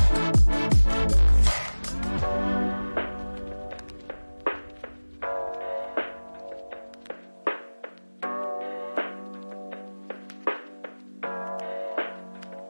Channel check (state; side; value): inverted; both; correlation -1.00